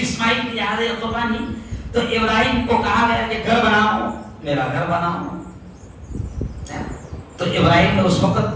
اسماعیل کی یاد ہے قربانی. تو ابراہیم کو کہا گیا کہ گھر بناؤ، میرا گھر بناؤ. تو ابراہیم نے اس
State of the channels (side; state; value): both; identical; correlation 1.00